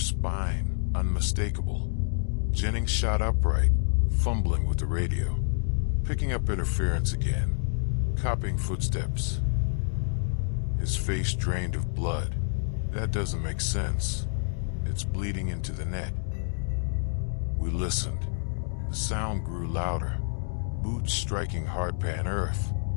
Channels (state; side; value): silent; right; digital silence